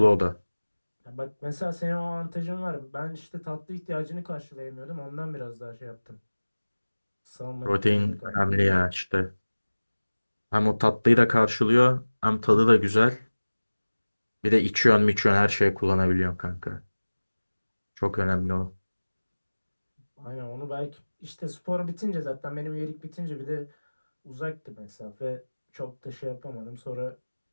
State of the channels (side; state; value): both; inverted; correlation -1.00